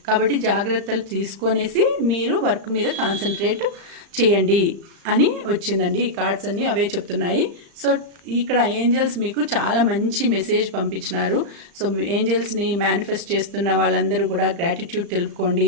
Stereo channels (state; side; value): late; left; 35 ms